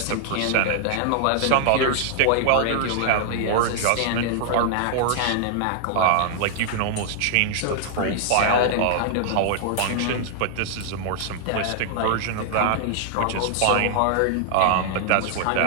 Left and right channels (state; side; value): different; both; correlation -0.01